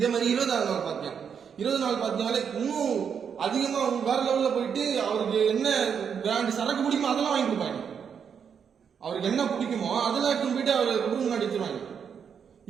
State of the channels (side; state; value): left; quieter; 7.2 dB